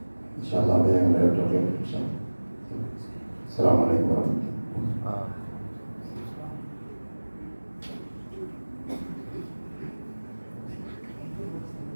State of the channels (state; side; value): inverted; both; correlation -1.00